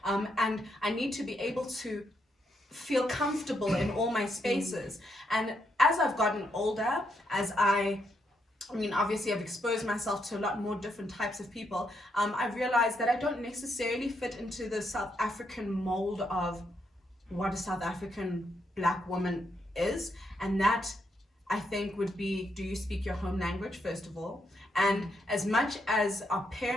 And I need to be able to feel comfortable in all my spaces. And as I've gotten older, as I mean, obviously I've exposed myself to a lot more different types of people. I've realized that I don't necessarily fit into the South African mold of what a South African black woman is. And that, I think, would be, do you speak your home language, first of all? And as much as our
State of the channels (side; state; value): both; normal; correlation 0.78